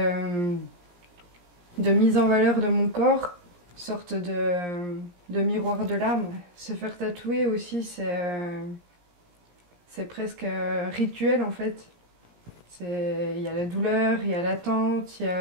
mise en valeur de mon corps, une sorte de miroir de l'âme. Se faire tatouer aussi, c'est presque rituel en fait. Il y a la douleur, il y a l'attente, il y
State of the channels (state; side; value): late; left; 17 ms